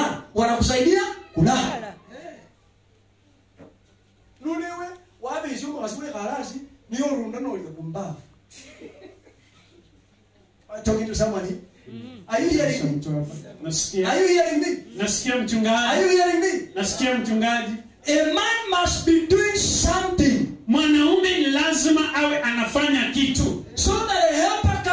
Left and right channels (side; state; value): both; identical; correlation 1.00